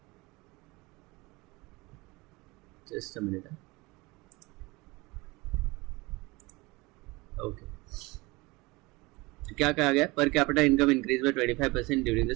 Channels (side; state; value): left; quieter; 23.5 dB